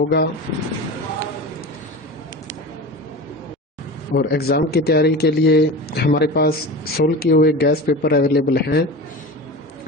और एग्ज़ाम की तैयारी के लिए हमारे पास सोल्व किए हुए गैस पेपर अवेलेबल हैं।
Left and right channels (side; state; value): both; normal; correlation 0.30